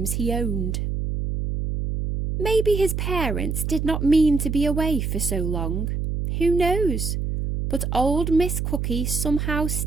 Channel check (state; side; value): noise; right; hum, 2 dB below the sound